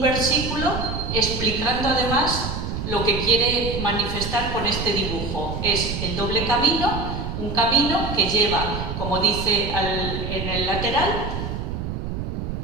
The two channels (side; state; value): right; noise; rumble, 4 dB below the sound